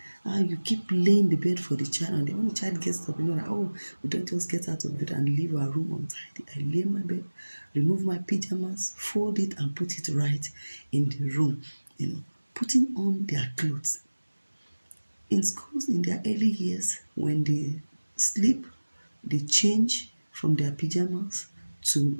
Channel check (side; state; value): both; inverted; correlation -1.00